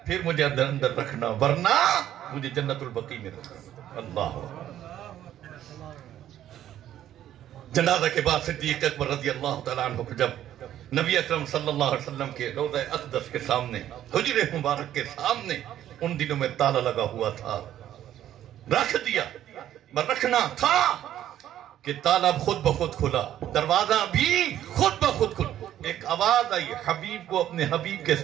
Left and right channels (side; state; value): left; quieter; 11.8 dB